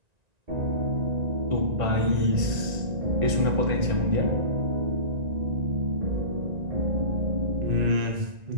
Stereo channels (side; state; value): left; late; 1.9 ms